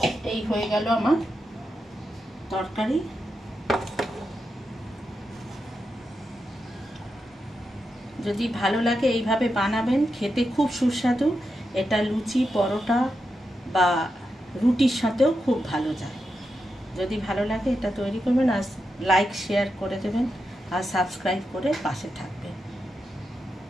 এই হয়ে গেল আমার তরকারি। যদি ভালো লাগে এইভাবে বানাবেন, খেতে খুব সুস্বাদু। এটা লুচি, পরোটা বা রুটির সাথেও খুব ভালো যায়। যদি ভালো লাগে এটা তৈরি করবেন, আর লাইক শেয়ার করে দেবেন, আর সাবস্ক্রাইব করে পাশে থাকবেন।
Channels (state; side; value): normal; both; correlation 0.87